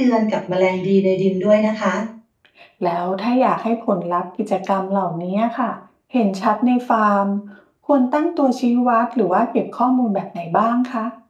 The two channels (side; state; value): both; identical; correlation 1.00